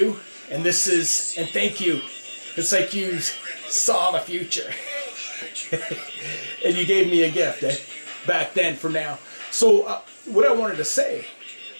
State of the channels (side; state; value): both; inverted; correlation -1.00